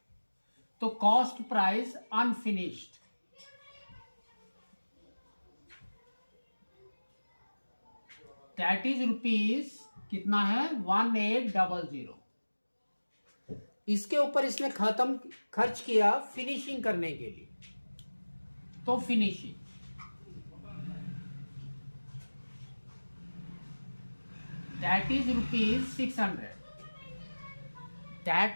तो cost price unfinished that is rupees कितना है? 1800. इसके ऊपर इसने खर्च किया फिनिशिंग करने के लिए. तो finishing that is rupees 600.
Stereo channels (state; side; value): inverted; both; correlation -1.00